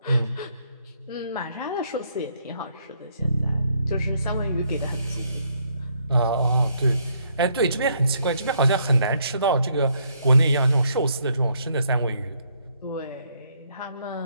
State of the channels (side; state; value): both; inverted; correlation -0.71